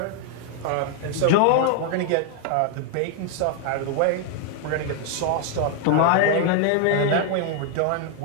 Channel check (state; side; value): different; both; correlation 0.00